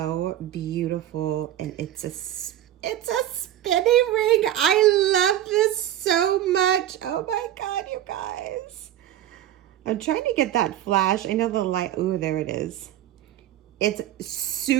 beautiful, and it's a spinning ring. I love this so much. Oh my God, you guys. I'm trying to get that flash. I know the light, ooh, there it is. It's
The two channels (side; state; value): left; quieter; 12.2 dB